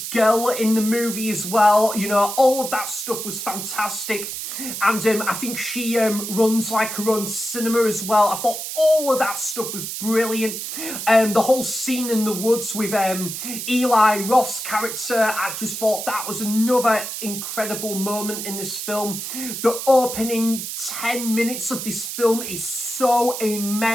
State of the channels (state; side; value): noise; right; hiss, 6 dB below the sound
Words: girl in the movie as well. You know, all of that stuff was fantastic. And I think she runs like her own cinema as well. I thought all of that stuff was brilliant. The whole scene in the woods with Eli Roth's character, I just thought that was another incredible moment in this film. The opening 10 minutes of this film is so